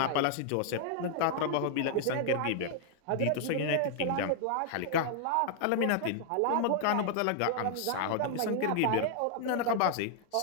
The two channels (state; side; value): different; both; correlation -0.01